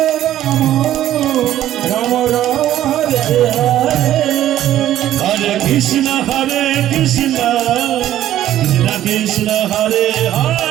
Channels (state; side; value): quieter; left; 12.6 dB